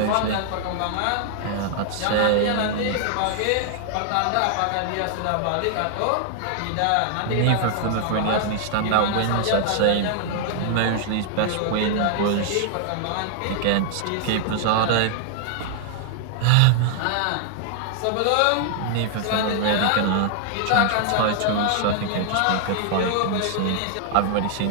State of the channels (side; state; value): both; different; correlation 0.00